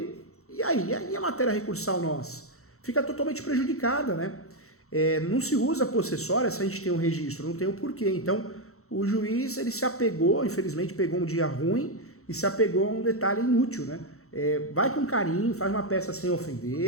e aí a matéria recursal nossa fica totalmente prejudicada, né? Não se usa possessória se a gente tem um registro, não tem o porquê. Então, o juiz, ele se apegou, infelizmente pegou um dia ruim e se apegou a um detalhe inútil, né? Vai com carinho, faz uma peça sem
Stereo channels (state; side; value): late; right; 0.64 ms